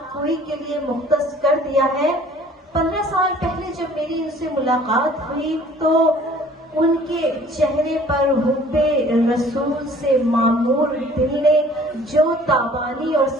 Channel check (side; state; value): both; normal; correlation 0.52